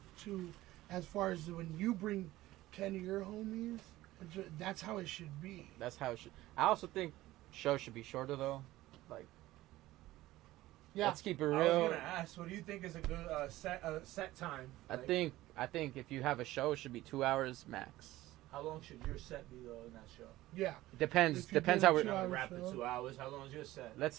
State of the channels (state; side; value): quieter; left; 16.6 dB